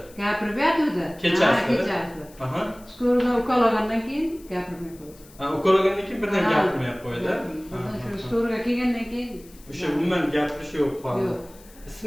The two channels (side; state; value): left; noise; hiss, 24 dB below the sound